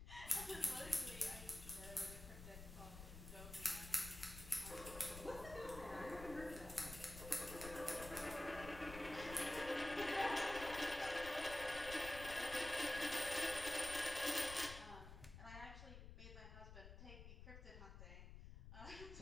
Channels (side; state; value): left; noise; rumble, 11 dB below the sound